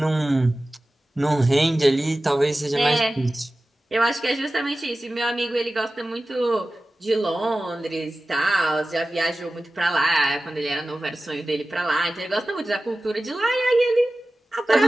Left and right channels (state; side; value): normal; both; correlation 0.96